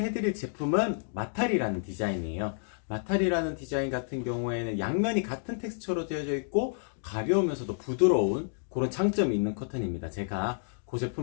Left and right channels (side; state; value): right; silent; digital silence